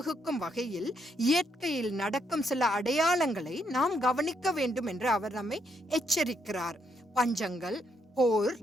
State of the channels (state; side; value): normal; both; correlation 0.76